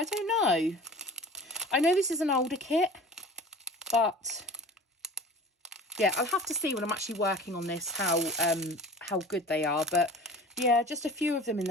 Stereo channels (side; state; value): both; normal; correlation 0.40